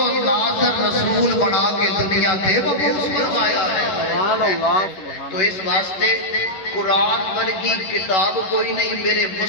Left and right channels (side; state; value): right; late; 11 ms